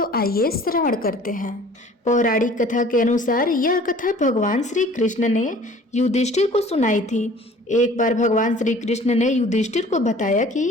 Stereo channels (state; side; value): normal; both; correlation 0.49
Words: आइए श्रवण करते हैं। पौराणिक कथा के अनुसार यह कथा भगवान श्री कृष्ण ने युधिष्ठिर को सुनाई थी। एक बार भगवान श्री कृष्ण ने युधिष्ठिर को बताया कि